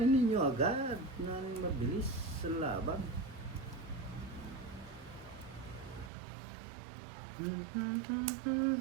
ninyo agad na mabilis sa laban.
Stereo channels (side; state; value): left; drops out; at 6.1 s